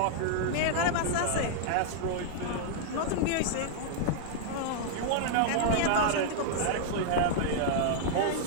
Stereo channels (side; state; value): both; different; correlation -0.01